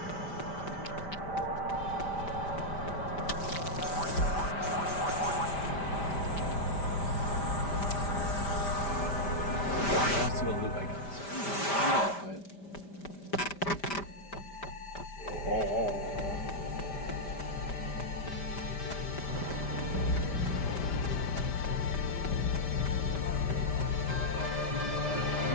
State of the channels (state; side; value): late; right; 5.1 ms